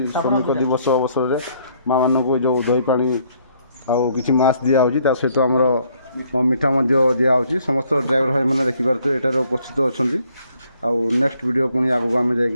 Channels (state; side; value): inverted; both; correlation -0.67